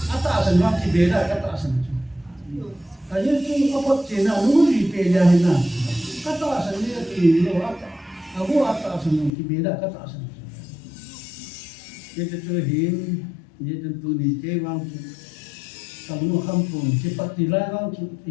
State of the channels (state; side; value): drops out; right; at 9.3 s